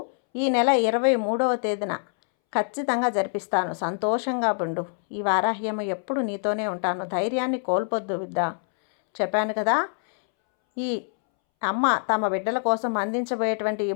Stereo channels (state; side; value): silent; right; 62 dB below the other